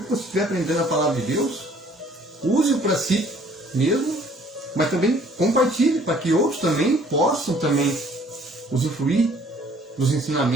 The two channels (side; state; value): both; normal; correlation 0.57